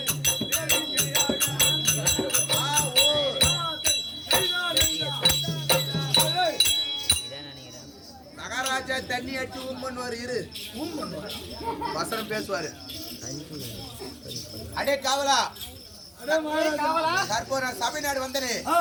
மகாராஜா தண்ணி அடிச்சு பண்ணுவாரு இரு வசனம் பேசுவாரு அடே காவலா சபைநாடு வந்தனே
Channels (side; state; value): both; identical; correlation 1.00